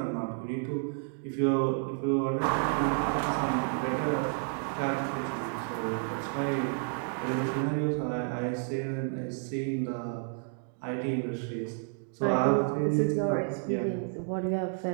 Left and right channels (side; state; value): left; silent; 57 dB below the other